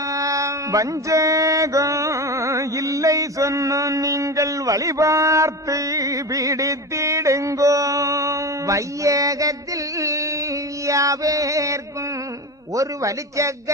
வஞ்சகம் இல்லை சொன்ன நீங்கள் வழிபார்த்து பிடித்திடுங்கோ வையகத்தில் யாவேர்க்கும் ஒரு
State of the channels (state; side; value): normal; both; correlation 0.24